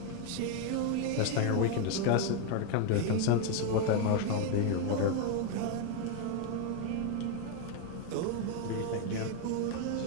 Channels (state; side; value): different; both; correlation 0.01